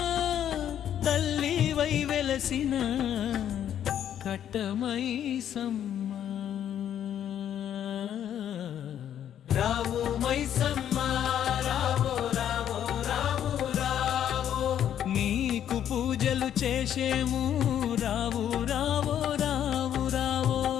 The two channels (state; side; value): quieter; right; 10.1 dB